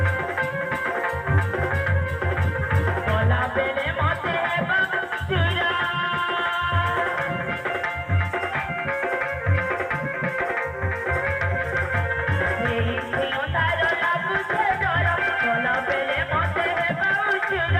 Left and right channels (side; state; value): both; identical; correlation 1.00